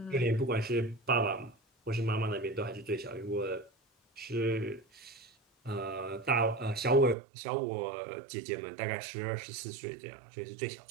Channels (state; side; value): drops out; left; at 7.2 s